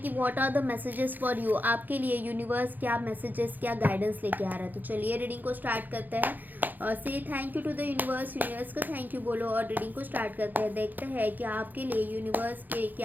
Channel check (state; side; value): late; left; 0.085 ms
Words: कि what are the messages for you. आपके लिए यूनिवर्स क्या मैसेजेस, क्या गाइडेंस लेके आ रहा है। तो चलिए रीडिंग को स्टार्ट करते हैं। Say thank you to the universe. Universe को थैंक यू बोलो और रीडिंग को स्टार्ट करते हैं। देखते हैं कि आपके लिए यूनिवर्स के